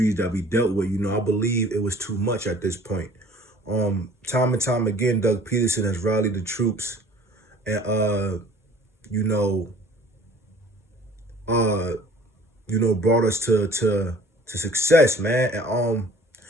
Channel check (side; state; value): both; normal; correlation 0.50